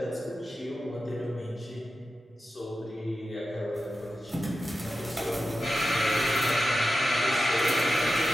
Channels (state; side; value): normal; both; correlation 0.91